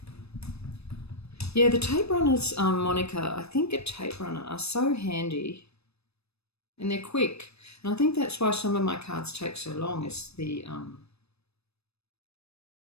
Yeah, the tape runners, Monica, I think a tape runner are so handy and they're quick. And I think that's why some of my cards take so long, is the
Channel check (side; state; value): right; late; 0.79 ms